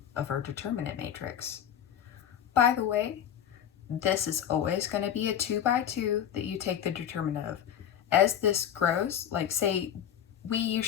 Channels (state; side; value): quieter; right; 9.6 dB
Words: of our determinant matrix. By the way, this is always going to be a 2 by 2 that you take the determinant of. As this grows, like say we